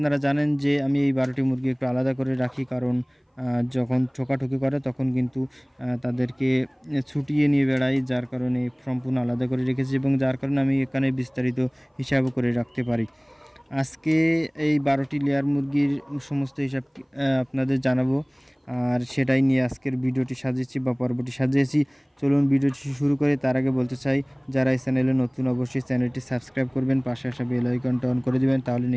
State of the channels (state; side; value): identical; both; correlation 1.00